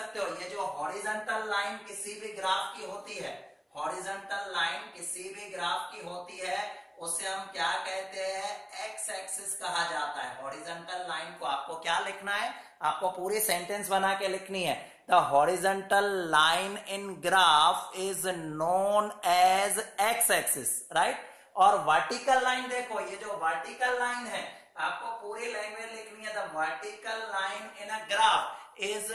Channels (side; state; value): both; identical; correlation 1.00